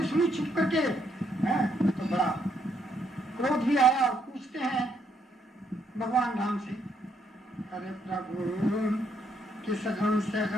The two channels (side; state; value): both; normal; correlation 0.73